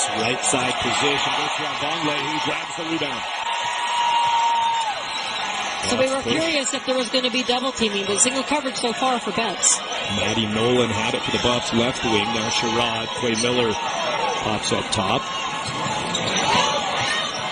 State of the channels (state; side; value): identical; both; correlation 1.00